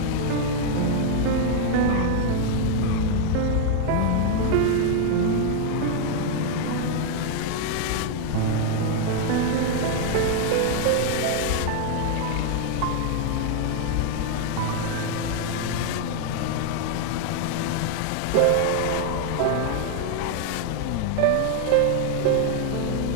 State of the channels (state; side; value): different; both; correlation 0.00